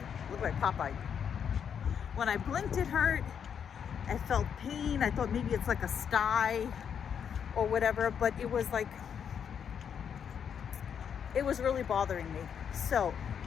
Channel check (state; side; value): quieter; right; 7.8 dB